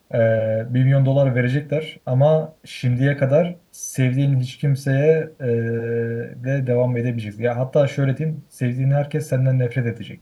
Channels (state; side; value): identical; both; correlation 1.00